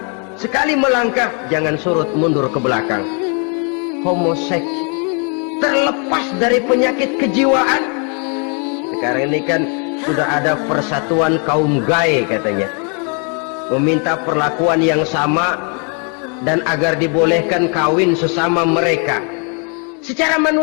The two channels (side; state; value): right; quieter; 37.8 dB